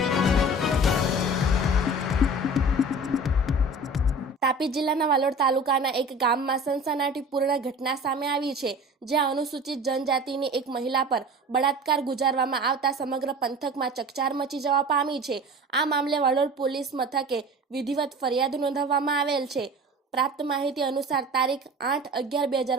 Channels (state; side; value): normal; both; correlation 0.39